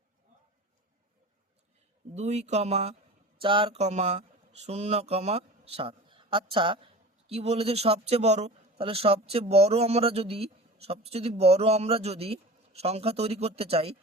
2,4,0,7। আচ্ছা কি বলেছে সবচেয়ে বড়, তাহলে সবচেয়ে বড় আমরা যদি সংখ্যা তৈরি করতে চাই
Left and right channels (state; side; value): normal; both; correlation 0.36